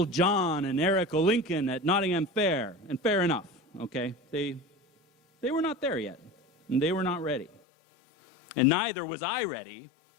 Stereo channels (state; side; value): drops out; right; at 7.6 s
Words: John and Eric O'Lincoln at Nottingham Fair. And fair enough, okay? They were not there yet, and they were not ready. And neither was I ready.